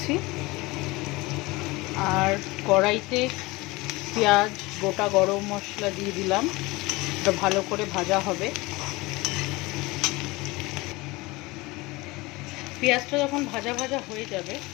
আর কড়াইতে পেঁয়াজ, গোটা গরম মশলা দিয়ে দিলাম। এটা ভালো করে ভাজা হবে। পেঁয়াজটা যখন ভাজা ভাজা হয়ে যাবে,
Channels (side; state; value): right; quieter; 22.4 dB